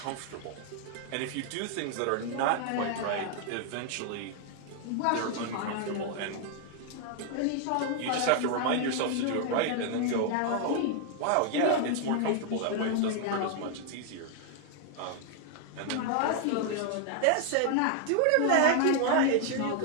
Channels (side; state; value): both; different; correlation 0.00